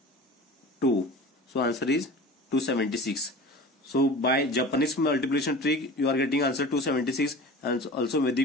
2. So answer is 276. So by Japanese multiplication trick you are getting answer 276, and also Vedic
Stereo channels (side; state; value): both; normal; correlation 0.37